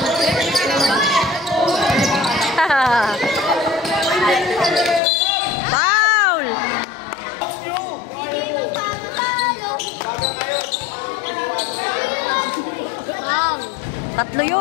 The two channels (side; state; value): right; drops out; at 5.0 s